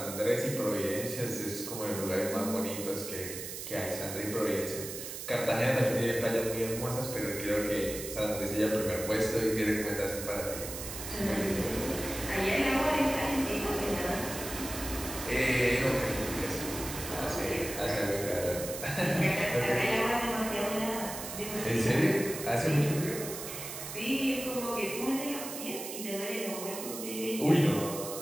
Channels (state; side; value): noise; right; hiss, 8 dB below the sound